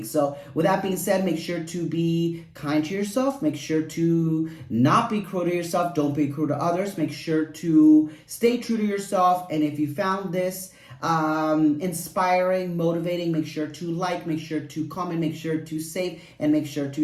So with that being said, make sure to be kind to yourself. Make sure to not be cruel to yourself. Don't be cruel to others. Make sure to stay true to yourself. And if you found this inspiring, motivating, make sure to like, make sure to comment, make sure to save, and make sure to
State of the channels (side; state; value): both; identical; correlation 1.00